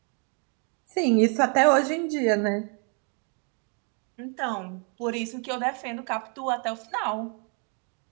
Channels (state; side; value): quieter; left; 39.6 dB